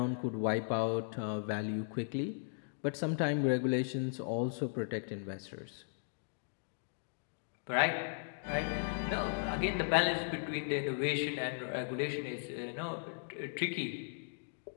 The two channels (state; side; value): silent; right; digital silence